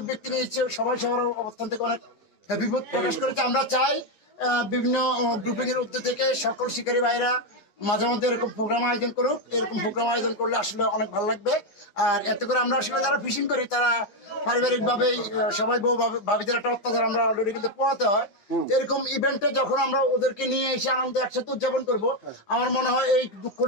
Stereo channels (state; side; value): late; right; 9.9 ms